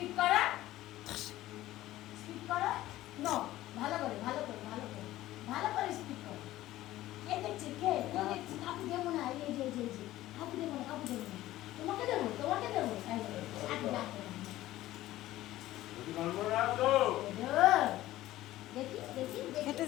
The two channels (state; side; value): quieter; right; 15.5 dB